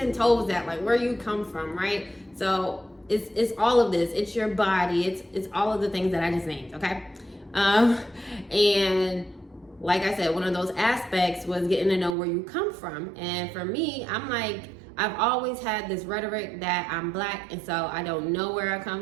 toes at, like where you come from, right? So it's all of this. It's your body. It's all of the things that I just named, okay? And like I said, one of those aspects was getting to know where you come from. And for me, I'm like, I've always had this rhetoric that I'm Black, and so I don't know where I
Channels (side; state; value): left; drops out; at 12.2 s